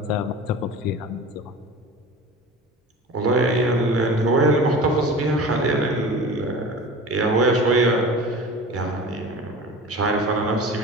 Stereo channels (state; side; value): normal; both; correlation 0.36